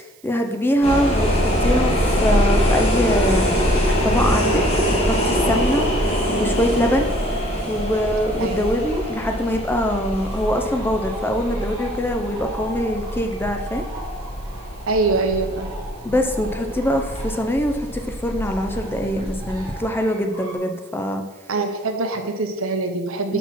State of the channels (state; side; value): noise; right; hiss, 28 dB below the sound